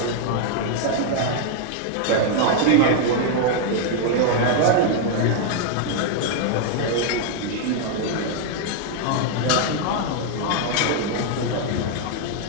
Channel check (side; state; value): both; different; correlation 0.00